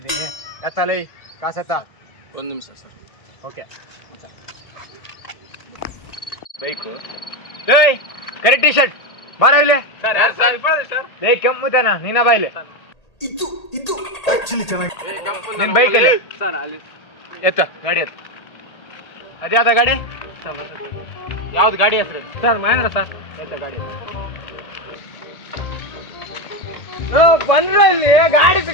ಎತ್ತಲೈ ಕಾಸೆತ್ತ. 1 ನಿಮಿಷ ಸರ್. ಓಕೆ. ಬೈಕು. ಏಯ್ ಕರೆಕ್ಟ್ ಟಿ ಶರ್ಟ್ ಬಾರ ಇಲ್ಲಿ. ಲೇ ಕೆಮ್ಮುತ್ತಾನ ನೀನ ಬಾ ಇಲ್ಲಿ. ಇದು ಆಕ್ಚುಲಿ ಚೆನ್ನಾಗಿ. ನಿನ್ ಬೈಕಲ್ಲಿ ಎತ್ತ ಗಾಡಿ ಎತ್ತ. ಅದ್ಯಾವ್ದ ಗಾಡಿ? ಯಾವ್ದು ಗಾಡಿ ಹೆಸರು? Sir Mahindra sir. ಎತ್ತ ಗಾಡಿ ಬಂದ್ರ ಇಲ್ಲಿ ಗಾಡಿ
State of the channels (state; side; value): late; right; 1.8 ms